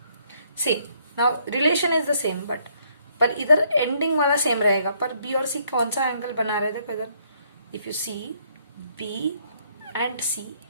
same. Now relation is the same, but पर इधर ending वाला same रहेगा, पर B और सी कौन सा angle बना रहे थे इधर, if you see B and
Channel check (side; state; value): both; inverted; correlation -0.68